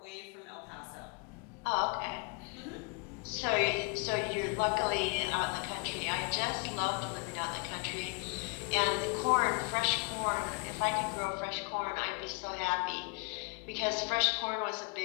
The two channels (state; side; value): quieter; right; 33.4 dB